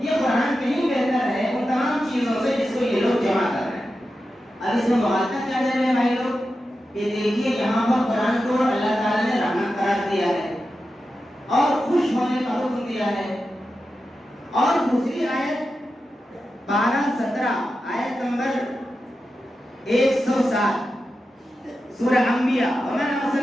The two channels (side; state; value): both; normal; correlation 0.90